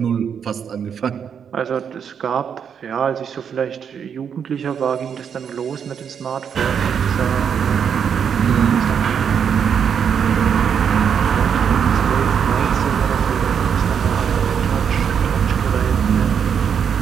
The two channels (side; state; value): left; quieter; 7.5 dB